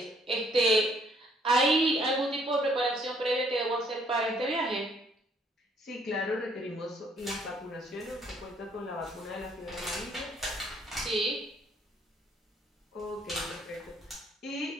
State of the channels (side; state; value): both; normal; correlation 0.65